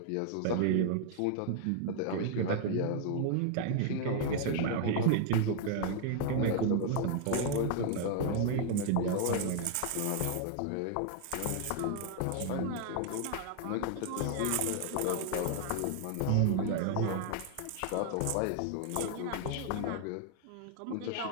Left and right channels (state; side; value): different; both; correlation 0.00